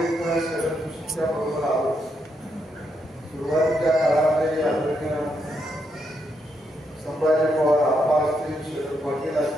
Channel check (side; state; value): both; normal; correlation 0.79